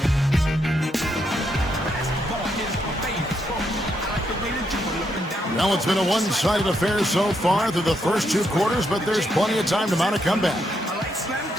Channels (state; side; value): normal; both; correlation 0.78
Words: Well, it's been a one-sided affair so far through the first 2 quarters, but there's plenty of time to mount a comeback.